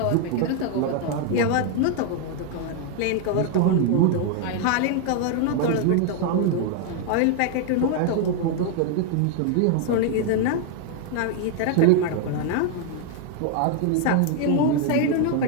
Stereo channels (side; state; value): both; different; correlation 0.00